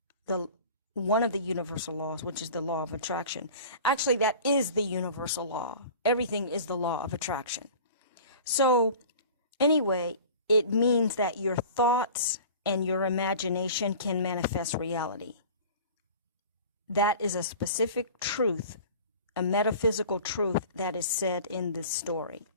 one of the universal laws, which is the law of attraction. Actually, that is the universal law. Everything is the law of attraction. So, anyway, it means that your thoughts and your imagination can manifest reality. That is a specific truth, a metaphysical truth that is said in this story.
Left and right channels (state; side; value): inverted; both; correlation -0.41